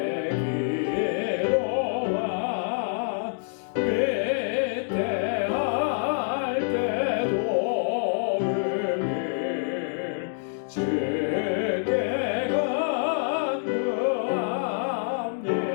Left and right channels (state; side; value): silent; right; digital silence